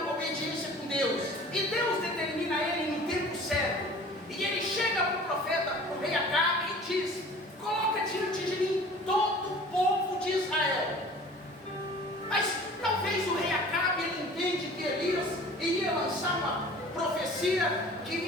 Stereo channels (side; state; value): both; normal; correlation 0.45